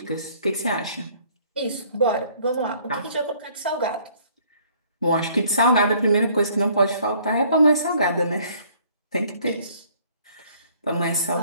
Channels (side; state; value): both; inverted; correlation -0.59